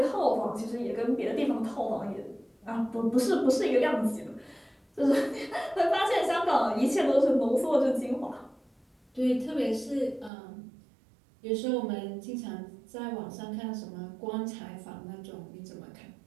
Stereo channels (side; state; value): left; drops out; at 10.3 s